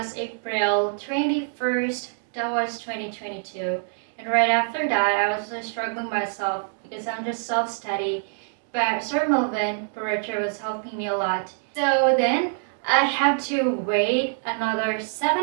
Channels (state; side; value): silent; left; digital silence